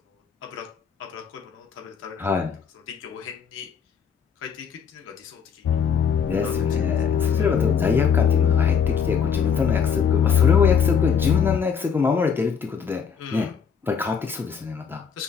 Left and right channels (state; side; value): quieter; right; 6.9 dB